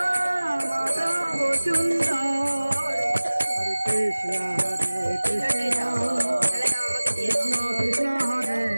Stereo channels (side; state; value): both; inverted; correlation -1.00